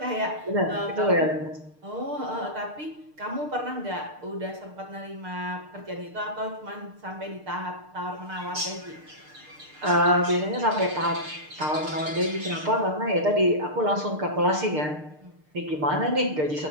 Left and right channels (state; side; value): late; left; 6.6 ms